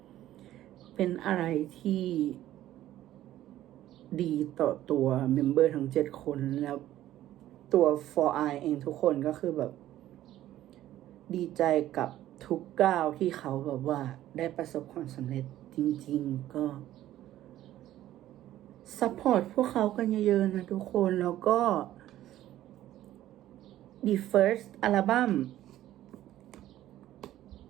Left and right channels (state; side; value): quieter; left; 13.6 dB